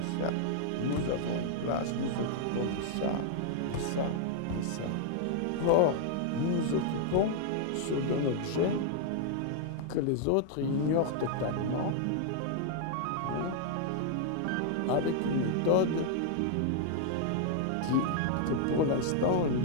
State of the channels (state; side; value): different; both; correlation -0.01